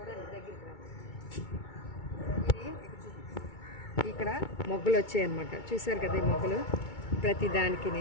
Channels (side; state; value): right; late; 2.2 ms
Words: దగ్గరికి రా. ఇది ఇక్కడ మొగ్గలు వచ్చాయి అనమాట. చూసారు కదా ఈ మొగ్గలు ప్రతి దానికి.